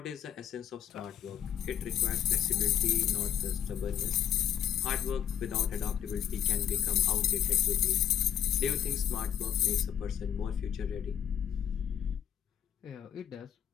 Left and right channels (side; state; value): right; quieter; 9.7 dB